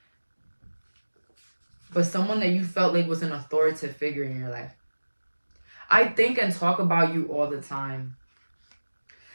But someone that you felt like was an authoritative figure in your life. I think and talk about you all the time.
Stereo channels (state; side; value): inverted; both; correlation -1.00